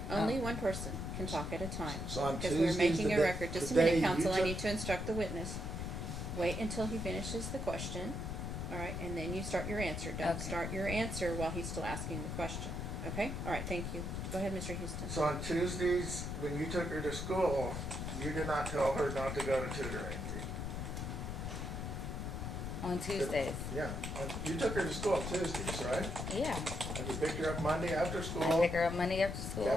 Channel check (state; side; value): noise; left; rumble, 4 dB below the sound